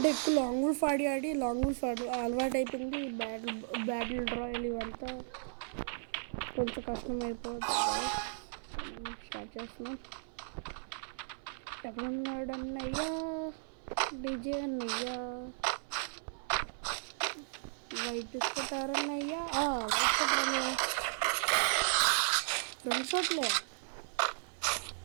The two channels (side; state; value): left; silent; 54 dB below the other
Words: ఎక్కువ లాంగ్ వూల్ఫ్ ఆడి లాంగ్ వూల్ఫ్ అలవాటు అయిపోయింది. బ్యాటిల్ రాయల్ ఇవంతా కొంచెం కష్టం అయిపోతుంది. స్టార్ట్ చేస్తున్నాం. ఎక్కడున్నాడు అన్నయ్యా, డీజే అన్నయ్యా, వైట్ తీసుకుంటారన్నయ్యా, వైట్ కొట్టారన్నయ్యా. 2 షాట్లే.